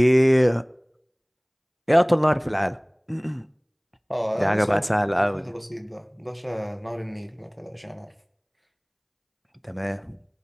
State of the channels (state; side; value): identical; both; correlation 1.00